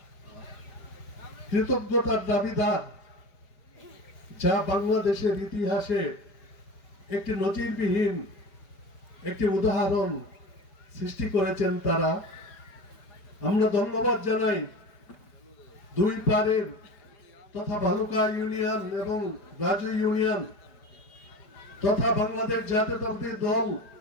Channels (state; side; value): late; right; 4.9 ms